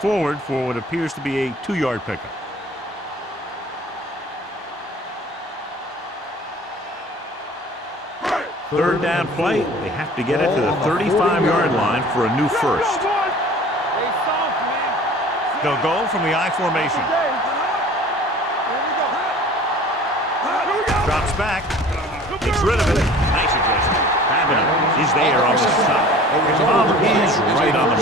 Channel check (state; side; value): normal; both; correlation 0.46